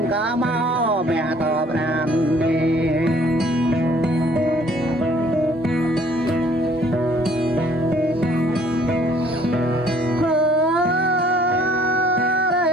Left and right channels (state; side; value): normal; both; correlation 0.59